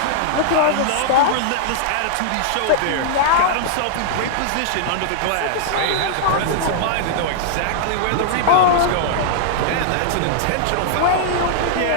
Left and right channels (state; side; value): different; both; correlation -0.01